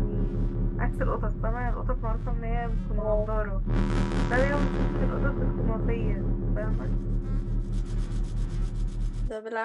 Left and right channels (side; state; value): both; identical; correlation 1.00